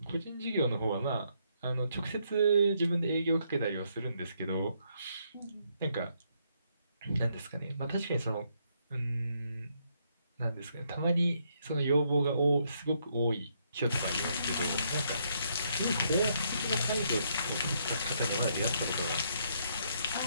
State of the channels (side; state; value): both; inverted; correlation -0.73